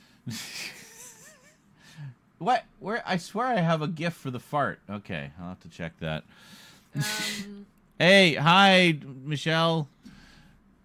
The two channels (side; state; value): both; identical; correlation 1.00